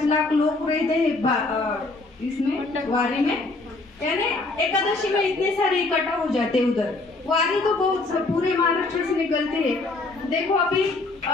लाख लोग रहते हैं इसमें वारी में, यानी एकादशी में इतने सारे इकट्ठा हो जाते उधर। वारी तो बहुत पूरे महाराष्ट्र से निकलते हैं। देखो अभी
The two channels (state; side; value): quieter; right; 3.3 dB